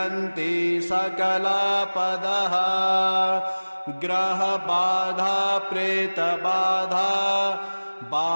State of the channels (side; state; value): both; inverted; correlation -1.00